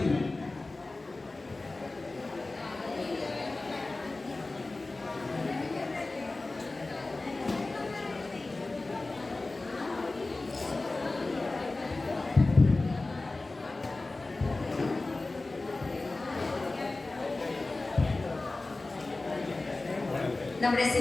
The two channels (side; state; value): right; quieter; 3.2 dB